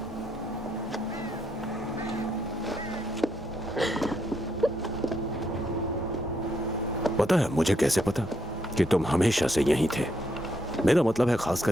पता है मुझे कैसे पता कि तुम हमेशा से यहीं थे? मेरा मतलब है खास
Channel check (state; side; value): normal; both; correlation 0.76